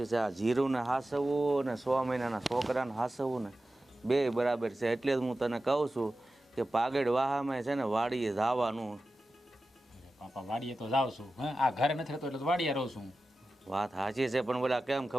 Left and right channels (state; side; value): normal; both; correlation 0.94